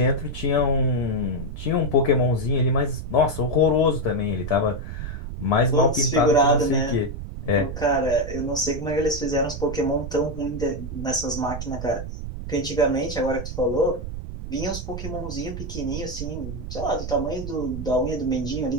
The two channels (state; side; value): noise; right; rumble, 7 dB below the sound